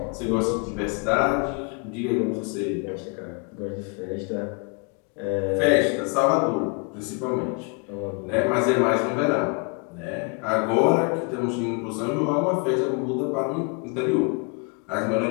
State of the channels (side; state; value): right; quieter; 35.0 dB